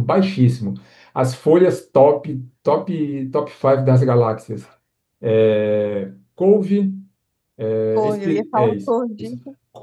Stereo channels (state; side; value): identical; both; correlation 1.00